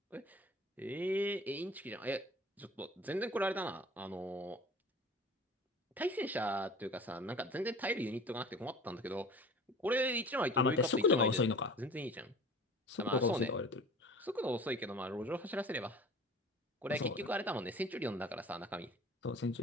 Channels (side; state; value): both; normal; correlation 0.42